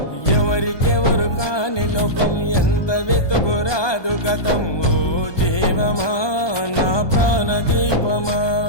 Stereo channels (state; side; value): late; right; 1.2 ms